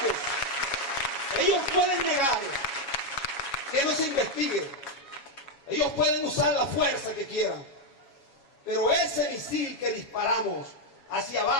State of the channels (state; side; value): late; right; 7.2 ms